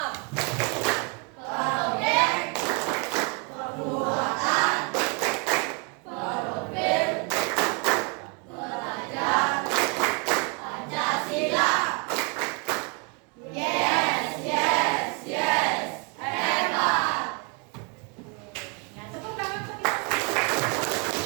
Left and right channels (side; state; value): left; quieter; 33.5 dB